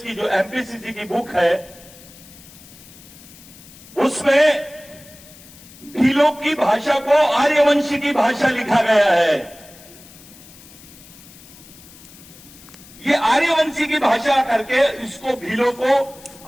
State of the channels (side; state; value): left; noise; hiss, 21 dB below the sound